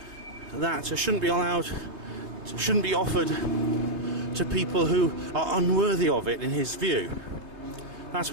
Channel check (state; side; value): late; left; 3.3 ms